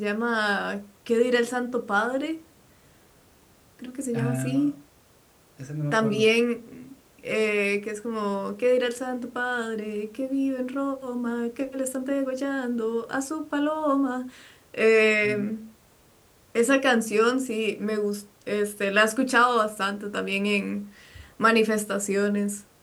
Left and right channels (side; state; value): both; identical; correlation 1.00